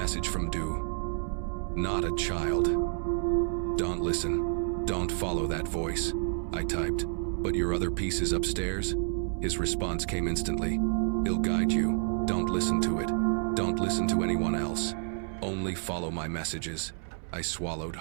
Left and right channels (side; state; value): left; silent; 58 dB below the other